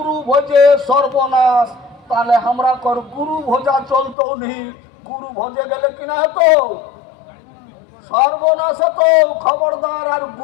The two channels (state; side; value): drops out; right; at 4.2 s